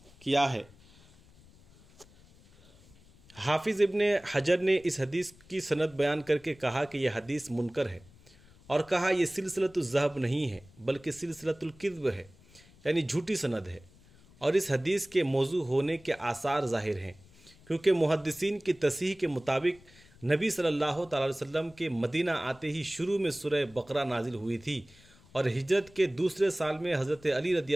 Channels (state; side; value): noise; left; rumble, 26 dB below the sound